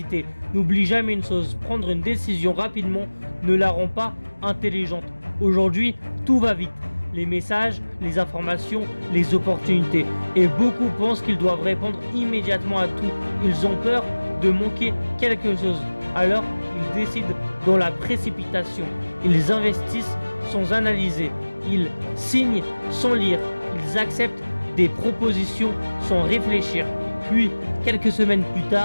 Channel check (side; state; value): both; inverted; correlation -1.00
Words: N'oublie jamais une chose, prendre une décision rapidement ne la rend pas intelligente. Aujourd'hui, tout va vite. Les messages, les informations, les opportunités. Et beaucoup pensent qu'ils doivent répondre immédiatement à tout. Ils ont peur de manquer quelque chose. Alors, ils décident dans la précipitation. Ils investissent sans analyser. Ils signent sans lire. Ils acceptent des propositions sans réfléchir. Puis, quelques semaines plus